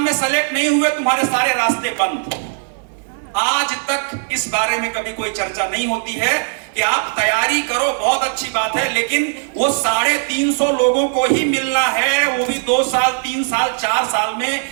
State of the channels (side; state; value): left; silent; 67 dB below the other